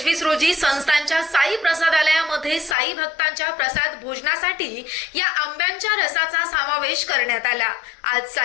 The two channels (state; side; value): drops out; right; at 2.8 s